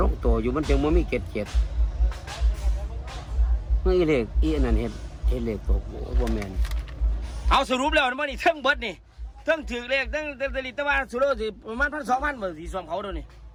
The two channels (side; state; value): both; identical; correlation 1.00